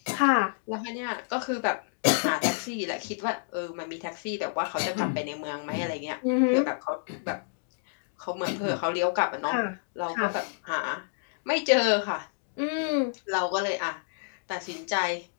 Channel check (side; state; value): right; silent; digital silence